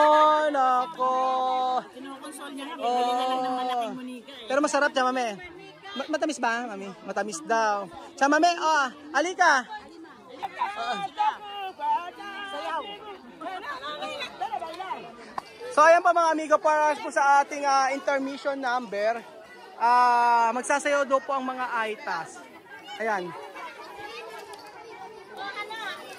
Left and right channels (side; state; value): both; identical; correlation 1.00